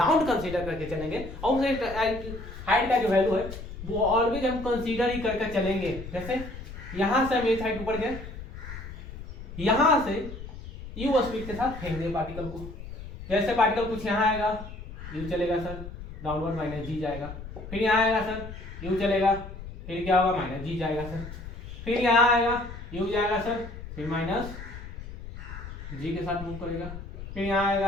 कंसीडर करके चलेंगे, और उस हाइट का जो वैल्यू है वो ऑलवेज हम कंसीडर ही करके चलेंगे। जैसे यहाँ से हम ये साइड ऊपर गए, यहाँ से यू स्पीड के साथ फेंक दिए पार्टिकल को। जैसे पार्टिकल कुछ यहाँ आएगा, यू चलेगा सर, डाउनवर्ड माइनस जी जाएगा। फिर यहाँ आएगा सर, यू चलेगा, फिर क्या होगा, माइनस जी जाएगा सर। फिर यहाँ आएगा, यू जाएगा सर, फिर माइनस जी के साथ मूव करेगा। फिर यहाँ आएगा,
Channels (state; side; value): noise; left; rumble, 11 dB below the sound